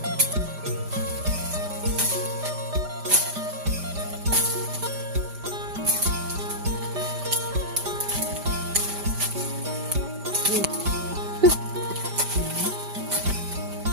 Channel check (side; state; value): left; late; 5.0 ms